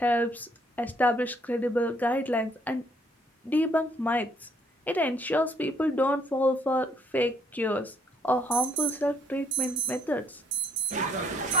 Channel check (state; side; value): normal; both; correlation 0.68